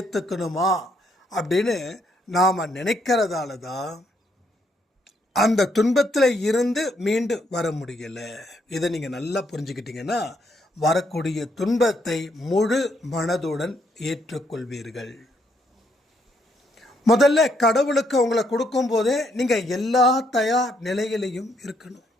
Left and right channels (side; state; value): both; normal; correlation 0.73